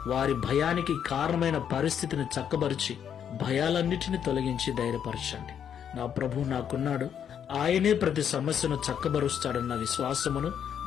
వారి భయానికి కారణమైన పరిస్థితిని చక్కబరిచి భయాలన్నిటిని తొలగించి ధైర్యపరచండి. నా ప్రభు నాకున్నాడు, ఆయనే ప్రతి సమస్యను చక్కబరుస్తాడన్న విశ్వాసమును,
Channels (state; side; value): quieter; right; 8.6 dB